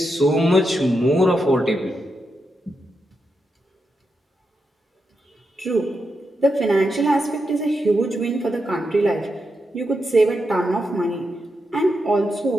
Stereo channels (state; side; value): normal; both; correlation 0.85